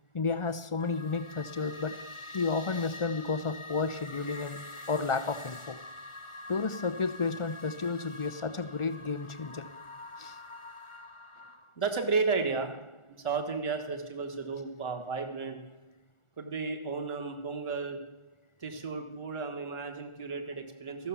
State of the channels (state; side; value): late; right; 1.4 ms